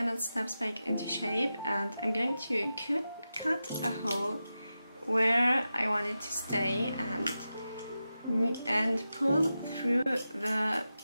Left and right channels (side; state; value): both; inverted; correlation -0.91